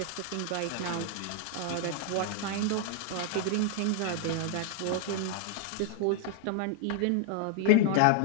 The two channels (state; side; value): different; both; correlation 0.00